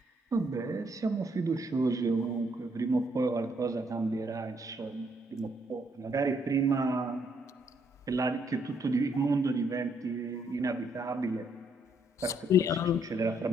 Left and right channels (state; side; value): normal; both; correlation 0.71